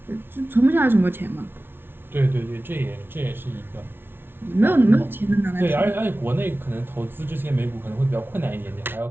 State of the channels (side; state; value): left; late; 0.11 ms